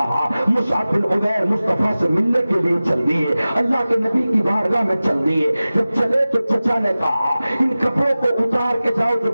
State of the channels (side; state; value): both; inverted; correlation -0.97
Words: مصعب بن عمیر مصطفیٰ سے ملنے کے لیے چل دیے، اللہ کے نبی کی بارگاہ میں چل دیے۔ جب چلے تو چچا نے کہا ان کپڑوں کو اتار کے جاؤ جو